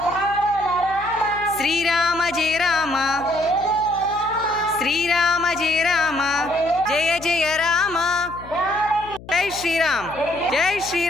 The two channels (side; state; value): left; noise; hum, 18 dB below the sound